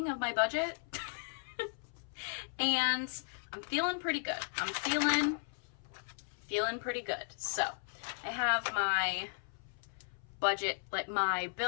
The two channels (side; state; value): right; silent; 54 dB below the other